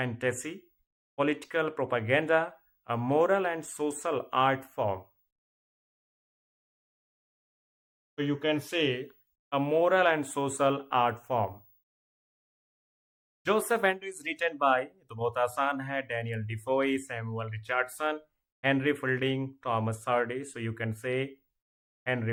political propaganda, a moral and social art form. So you can say a moral and social art form. Joseph Andrews written by, तो बहुत आसान है, Daniel Defoe, Samuel Richardson, Henry Fielding, Thomas Hardy. So you can say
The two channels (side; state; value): both; identical; correlation 1.00